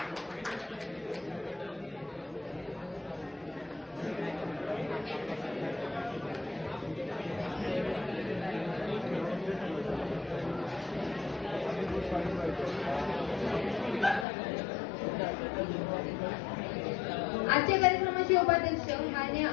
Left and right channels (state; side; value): drops out; right; at 14.2 s